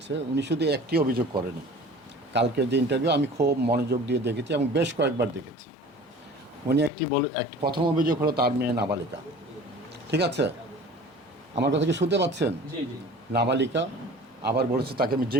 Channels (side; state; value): both; normal; correlation 0.43